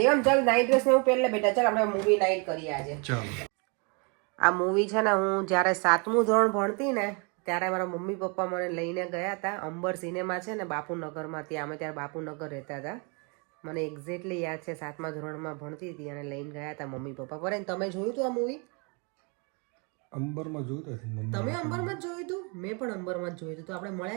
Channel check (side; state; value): left; quieter; 33.6 dB